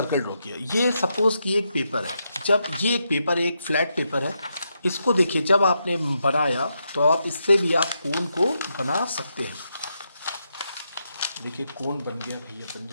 ड्रॉ किया, ये सपोज कि एक पेपर है, जब ये एक पेपर एक फ्लैट पेपर है, इसको देखिए जब आपने बनाया तो आप इससे भी आप कोन को बना सकते हैं। देखिए कोन बन गया भैया, बन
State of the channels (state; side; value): inverted; both; correlation -0.82